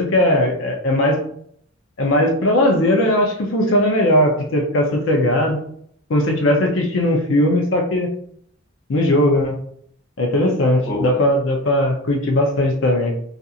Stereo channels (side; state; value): both; normal; correlation 0.18